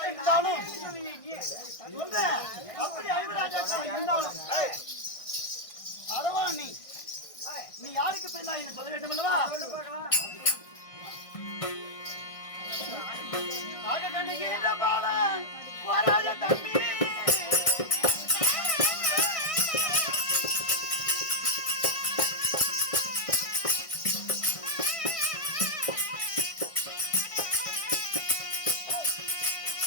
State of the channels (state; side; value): late; right; 1.6 ms